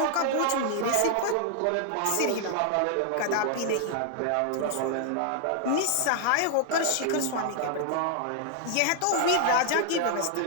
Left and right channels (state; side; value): different; both; correlation -0.01